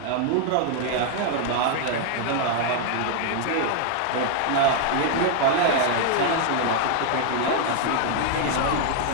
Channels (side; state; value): both; different; correlation 0.00